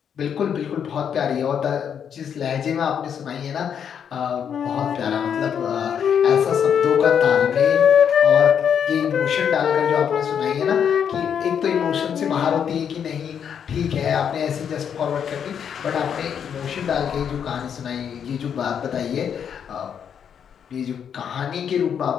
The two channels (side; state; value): right; quieter; 8.0 dB